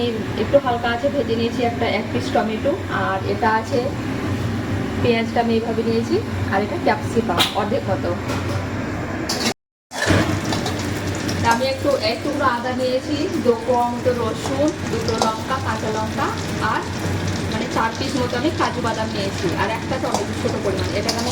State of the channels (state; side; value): identical; both; correlation 1.00